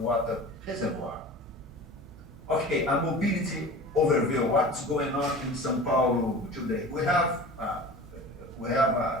reservoir. Okay, a mobility overview. What's going on in São Paulo today? We have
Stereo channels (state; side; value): normal; both; correlation 0.37